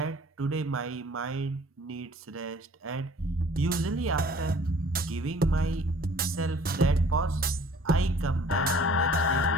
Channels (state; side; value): normal; both; correlation 0.52